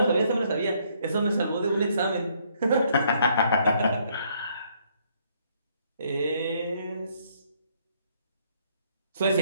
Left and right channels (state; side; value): inverted; both; correlation -0.68